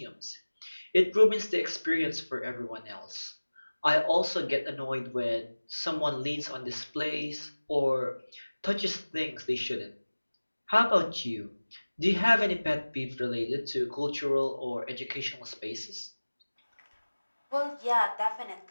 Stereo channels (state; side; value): inverted; both; correlation -1.00